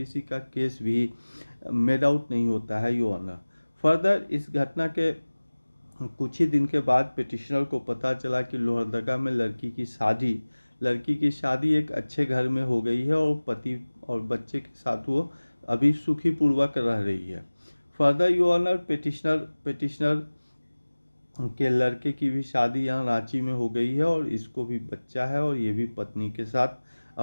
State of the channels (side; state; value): both; inverted; correlation -1.00